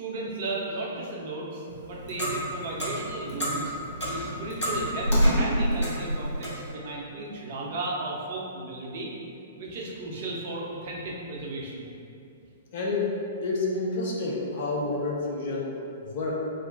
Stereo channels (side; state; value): both; inverted; correlation -0.50